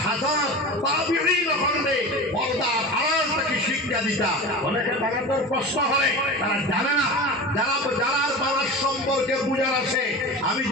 হাজার তাবিঈন হলে পর্দার আড়াল থেকে শিক্ষা দিতা। অনেকে বাংলাদেশের প্রশ্ন হয়, তারা জানে না। যারা বাংলার সম্পর্কে বুঝার আছে, আমি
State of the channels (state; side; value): normal; both; correlation 0.30